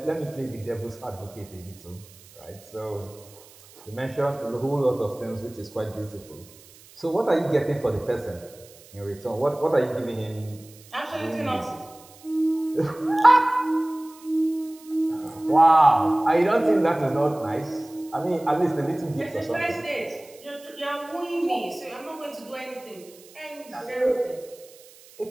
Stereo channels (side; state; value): right; noise; hiss, 23 dB below the sound